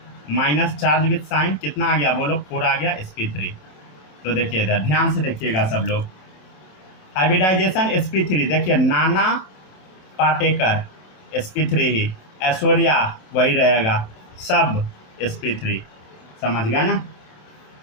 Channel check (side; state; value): right; late; 27 ms